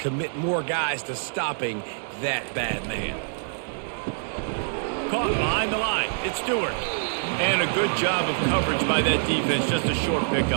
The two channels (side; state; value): left; silent; digital silence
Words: more guys to stopping that bad man. Caught behind the line. It's Stewart. And a good job of coverage by that defense, just a short